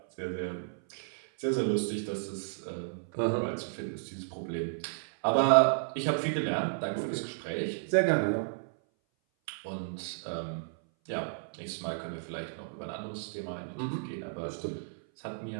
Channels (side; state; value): left; silent; 56 dB below the other